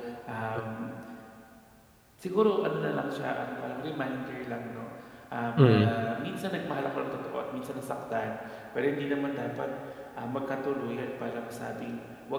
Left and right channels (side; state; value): both; identical; correlation 1.00